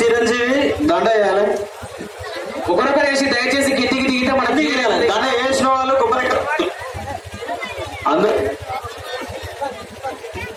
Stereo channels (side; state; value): both; identical; correlation 1.00